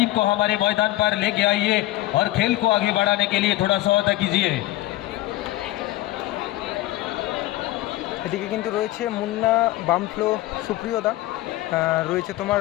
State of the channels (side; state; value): right; quieter; 17.0 dB